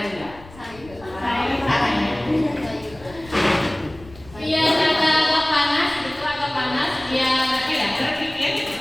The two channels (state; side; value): noise; left; rumble, 21 dB below the sound